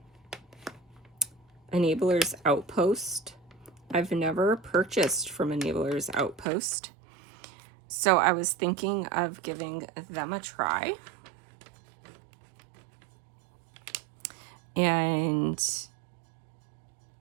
Enabler's Outpost. I've never purchased from Enabler's Outpost, so I was thinking of giving them a try. And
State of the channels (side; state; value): left; drops out; at 6.5 s